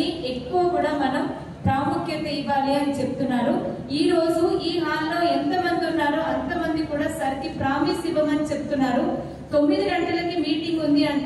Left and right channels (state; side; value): identical; both; correlation 1.00